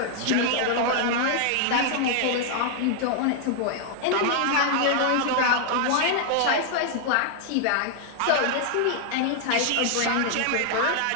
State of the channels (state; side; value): different; both; correlation 0.00